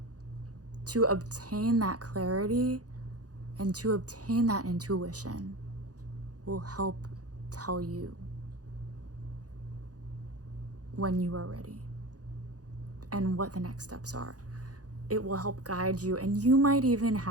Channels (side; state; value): left; late; 0.67 ms